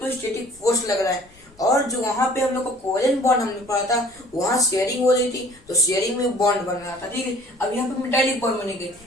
फोर्स लग रहा है। और जो वहाँ पे हम लोग को कोवैलेंट बॉन्ड हमने पढ़ा था, वहाँ शेयरिंग हो रही थी, तो शेयरिंग में बॉन्ड बन रहा था, ठीक है। अब यहाँ पे मेटालिक बॉन्ड बनेंगे,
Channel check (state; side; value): noise; left; rumble, 28 dB below the sound